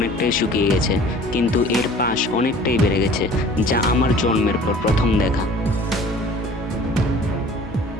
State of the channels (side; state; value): both; normal; correlation 0.48